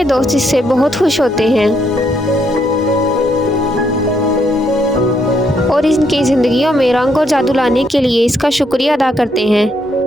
दोस्त इससे बहुत खुश होते हैं और इनकी जिंदगियों में रंग और जादू लाने के लिए इसका शुक्रिया अदा करते हैं।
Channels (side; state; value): both; normal; correlation 0.74